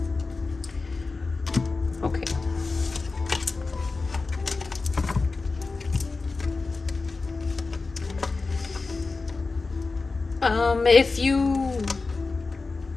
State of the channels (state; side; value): quieter; right; 3.9 dB